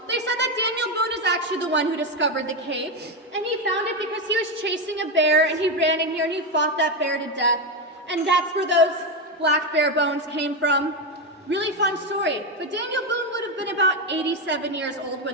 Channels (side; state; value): both; normal; correlation 0.10